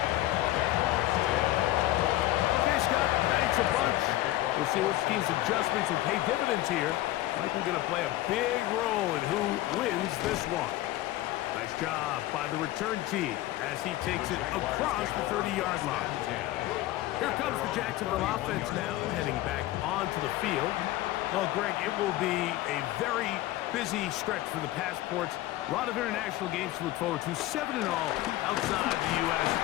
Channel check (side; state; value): right; quieter; 15.9 dB